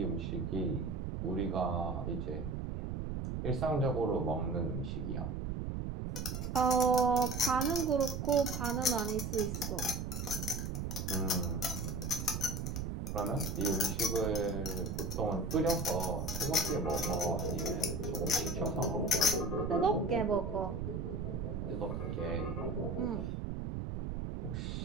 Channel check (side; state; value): right; noise; rumble, 3 dB below the sound